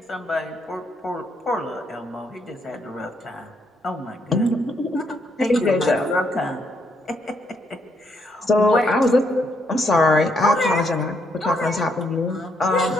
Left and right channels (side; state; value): both; normal; correlation 0.74